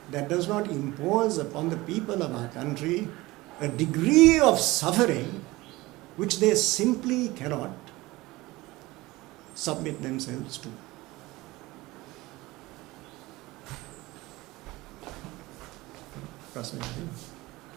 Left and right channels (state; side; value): quieter; left; 20.1 dB